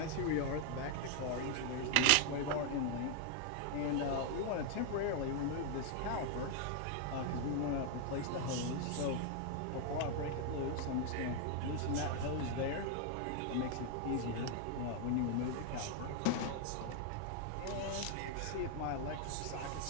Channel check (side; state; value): both; different; correlation 0.00